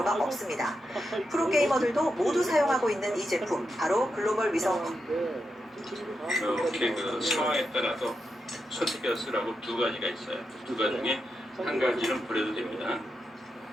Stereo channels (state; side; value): normal; both; correlation 0.86